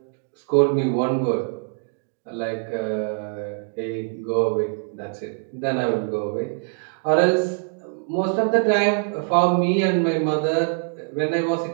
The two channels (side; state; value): left; silent; 55 dB below the other